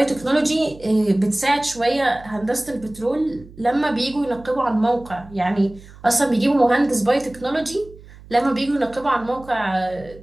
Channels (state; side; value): noise; right; hum, 20 dB below the sound